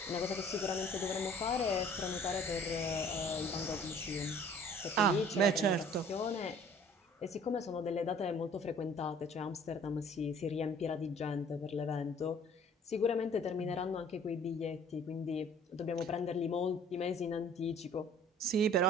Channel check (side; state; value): both; normal; correlation 0.52